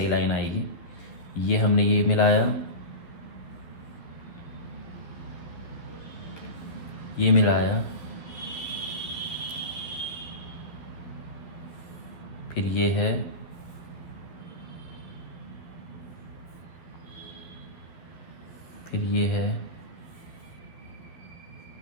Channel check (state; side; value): late; right; 12 ms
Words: लाइन आएगी। ये हमने ये मिलाया, ये मिलाया, फिर ये है, फिर ये है,